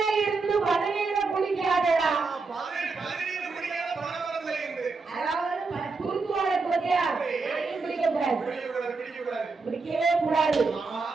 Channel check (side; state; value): left; quieter; 4.2 dB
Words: இருந்து பதவியில குளிக்காதடா. அதாவது குறுக்குவாழ குறையா குடிக்க கூடாது, குடிக்கவே கூடாது.